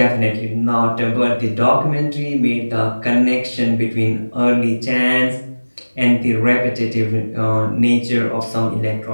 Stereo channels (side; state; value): both; inverted; correlation -1.00